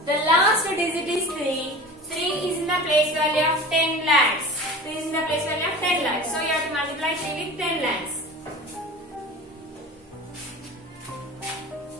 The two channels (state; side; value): normal; both; correlation 0.36